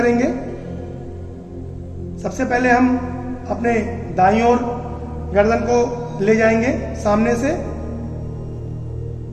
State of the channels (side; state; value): both; identical; correlation 1.00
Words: सबसे पहले हम अपने दाईं ओर गर्दन को ले जाएंगे सामने से,